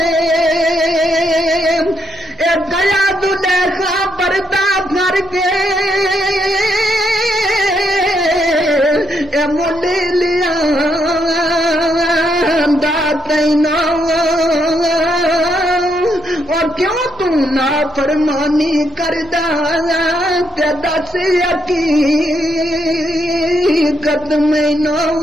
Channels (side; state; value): both; normal; correlation 0.77